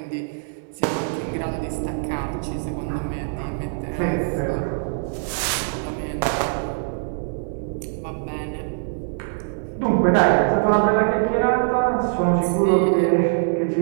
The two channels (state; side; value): silent; left; 63 dB below the other